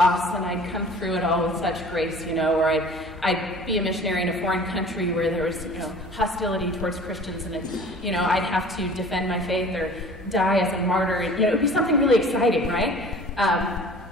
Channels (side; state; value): both; normal; correlation 0.46